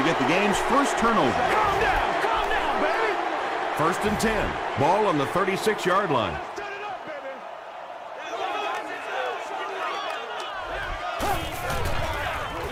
get the game's first turnover. Calm down, baby. 1st and 10. Ball on the 36-yard line.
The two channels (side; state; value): both; identical; correlation 1.00